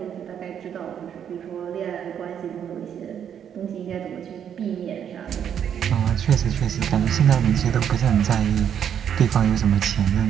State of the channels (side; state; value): left; quieter; 8.8 dB